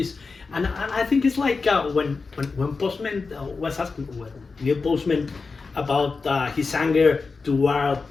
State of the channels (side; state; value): right; quieter; 4.4 dB